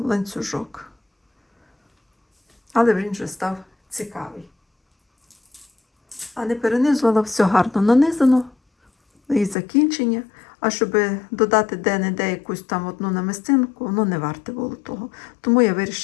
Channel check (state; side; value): drops out; right; at 9.6 s